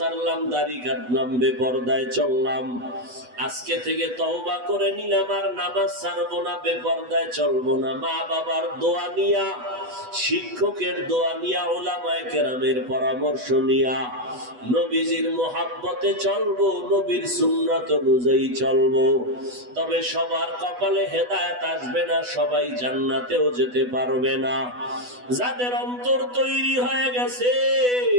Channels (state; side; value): late; left; 8.1 ms